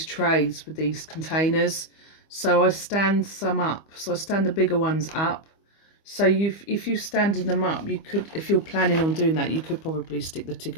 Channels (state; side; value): late; right; 25 ms